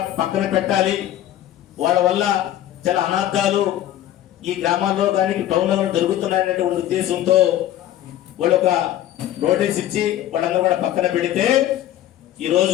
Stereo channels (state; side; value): quieter; right; 12.7 dB